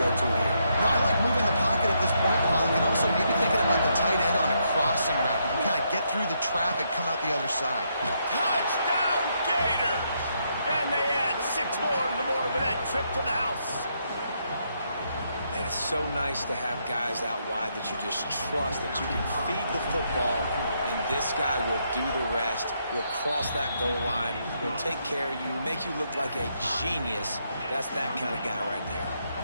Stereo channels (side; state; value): both; inverted; correlation -0.77